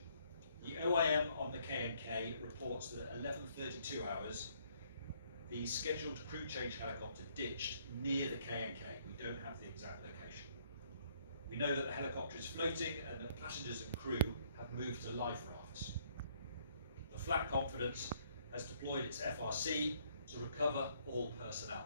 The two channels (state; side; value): inverted; both; correlation -0.66